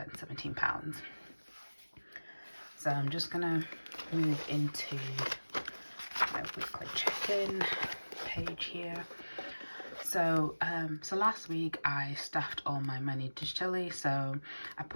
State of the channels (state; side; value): inverted; both; correlation -1.00